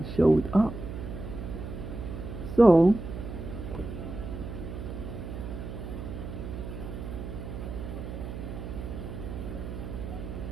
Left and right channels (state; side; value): noise; right; hum, 7 dB below the sound